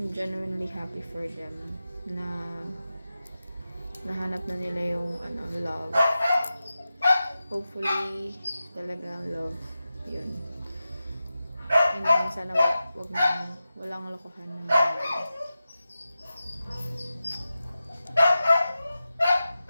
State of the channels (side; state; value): both; inverted; correlation -0.93